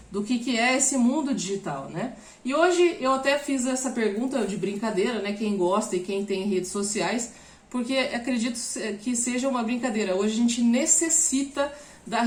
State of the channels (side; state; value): both; identical; correlation 1.00